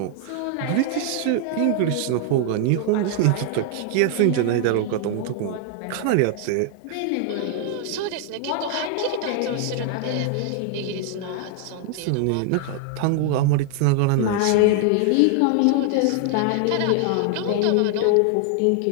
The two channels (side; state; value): both; different; correlation 0.00